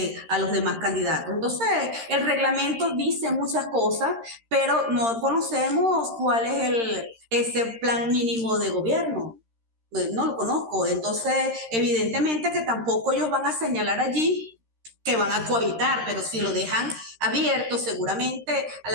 a los demás candidatos. Entonces, el reglamento dice muchas cosas, pero no conocemos cuál es ese plan mínimo de gobierno. Pues no lo conozco, entonces evidentemente que tampoco ellos van a señalar allí que van a cohabitar, pero si lo dejan abierto, seguramente a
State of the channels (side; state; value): left; late; 13 ms